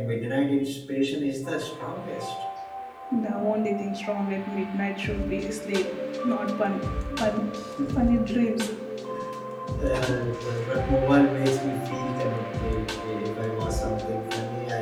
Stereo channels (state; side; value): identical; both; correlation 1.00